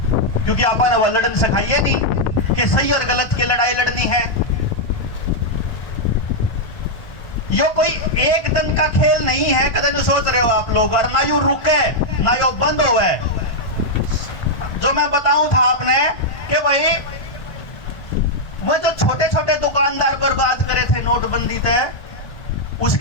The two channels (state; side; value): late; right; 1.5 ms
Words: क्योंकि आपने वो लड़न सिखाइए नहीं कि सही और गलत की लड़ाई लड़नी है। यो कोई एक दिन का खेल नहीं है, कदे नहीं सोच रहे हो आप लोग, और ना यू रुके ना यो बंद हो। जो मैं बताऊं था आपने कि भाई वो जो छोटे छोटे दुकानदार बर्बाद करे थे नोटबंदी तय,